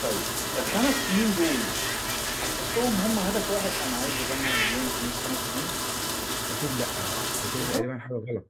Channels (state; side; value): identical; both; correlation 1.00